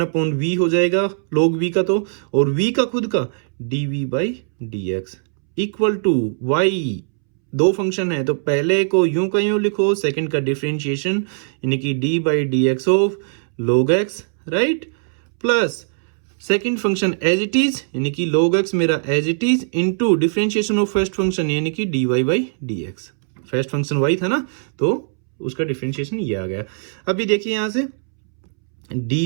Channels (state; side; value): silent; left; 66 dB below the other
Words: हो जाएगा log v का, तो और v का खुद का dv by D x equal to y। दो फंक्शन है तो पहले को यूं का यूं लिखो, सेकंड का डिफरेंशिएशन यानी कि d by D x of log x, right, plus second function as it is यानी कि log x मेरा as it is into differentiation of first function यानी कि dy by D x. First function y था ना, तो उसका differentiation ये आ गया। अभी देखिए यहां से